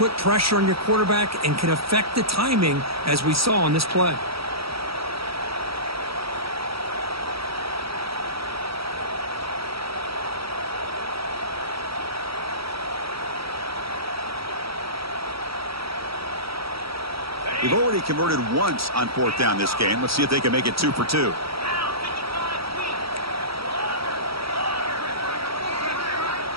pressure on your quarterback and can affect the timing, as we saw on this play. They've already converted once on fourth down this game. Let's see if they can make it 2 for 2.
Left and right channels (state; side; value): late; left; 0.76 ms